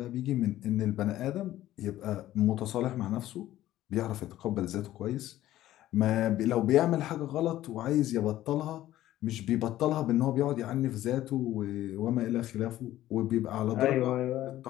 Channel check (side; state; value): right; quieter; 14.2 dB